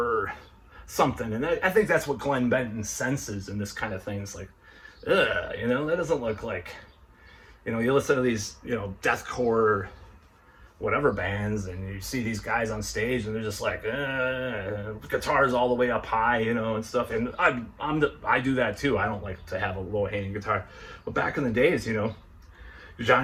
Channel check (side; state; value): both; identical; correlation 1.00